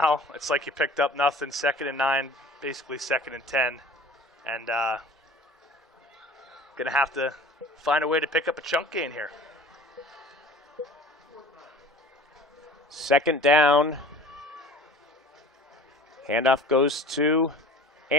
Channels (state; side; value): normal; both; correlation 0.43